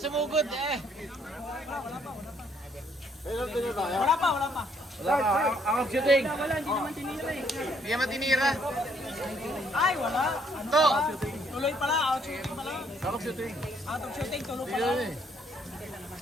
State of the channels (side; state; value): both; normal; correlation 0.67